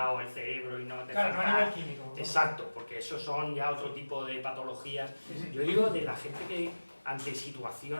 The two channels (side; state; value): both; inverted; correlation -1.00